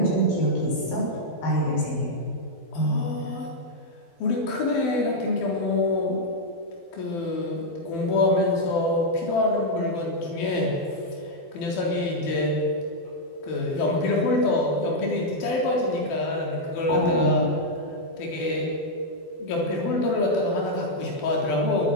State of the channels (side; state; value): right; late; 12 ms